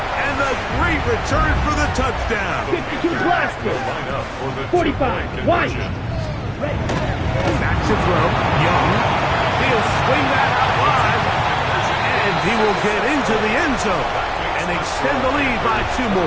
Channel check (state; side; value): identical; both; correlation 1.00